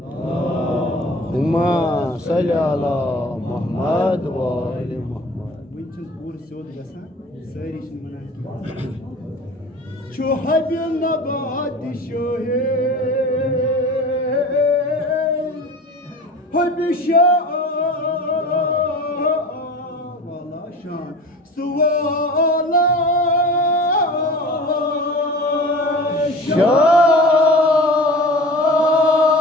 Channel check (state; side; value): normal; both; correlation 0.39